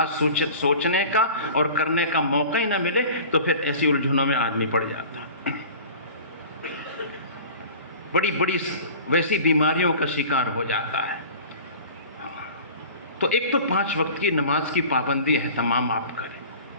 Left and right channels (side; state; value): both; inverted; correlation -0.40